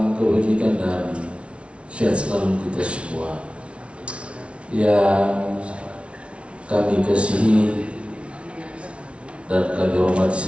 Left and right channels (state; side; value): late; left; 0.060 ms